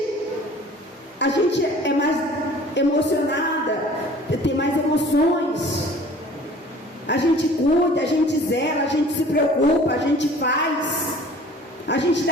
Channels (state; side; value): normal; both; correlation 0.48